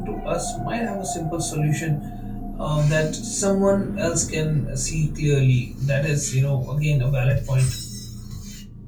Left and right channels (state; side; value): identical; both; correlation 1.00